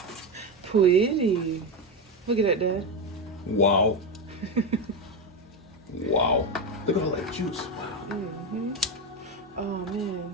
pretty. Look at that, Dad. Wow. Wow. Look at all that juice. Wow. Mm-hmm. Oh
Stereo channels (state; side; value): normal; both; correlation 0.13